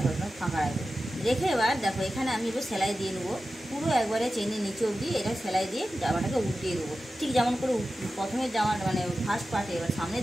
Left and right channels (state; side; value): normal; both; correlation 0.94